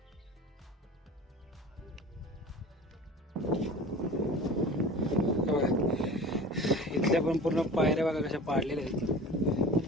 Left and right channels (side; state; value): both; normal; correlation 0.38